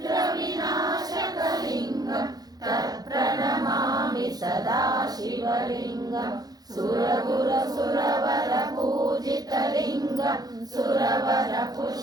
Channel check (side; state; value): left; late; 0.19 ms